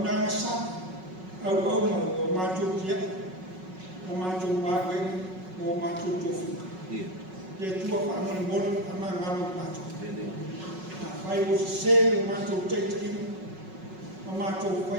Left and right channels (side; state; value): left; late; 5.4 ms